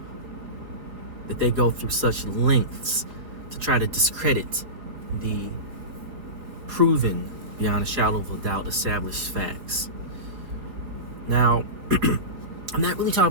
That they go through such lengths to try to discredit the proven, beyond a shadow of a doubt, established facts. Now, I'm not really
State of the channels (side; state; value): left; late; 4.9 ms